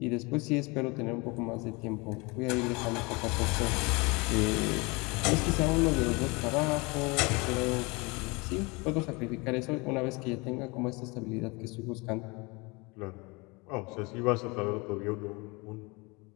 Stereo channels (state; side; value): quieter; right; 26.9 dB